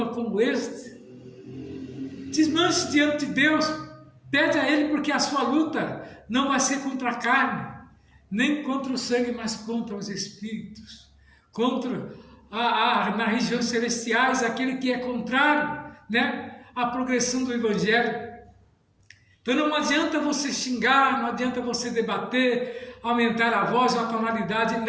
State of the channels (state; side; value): identical; both; correlation 1.00